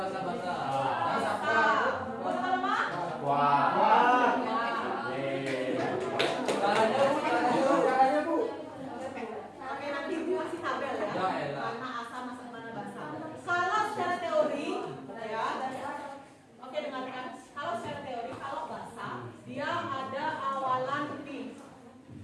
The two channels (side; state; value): both; identical; correlation 1.00